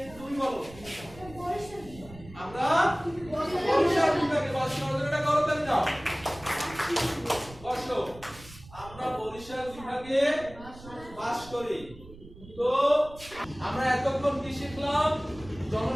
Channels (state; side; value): noise; right; rumble, 18 dB below the sound